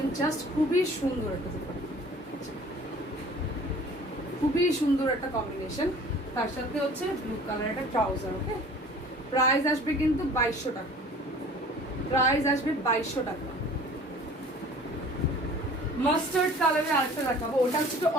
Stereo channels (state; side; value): normal; both; correlation 0.47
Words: জাস্ট খুবই সুন্দর একটা দুপাট্টা, খুবই সুন্দর একটা কম্বিনেশন। তার সাথে হচ্ছে ব্লু কালার একটা ট্রাউজার, ওকে। প্রাইস আসবে কিন্তু 2200 টাকা, প্রাইস আসবে 2200 টাকা। মাস্টার্ড কালারের আরেকটা দেখাবো, ওটা হচ্ছে একটু